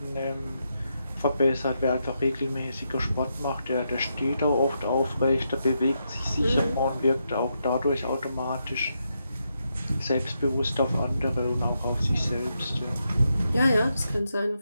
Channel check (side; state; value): both; inverted; correlation -0.83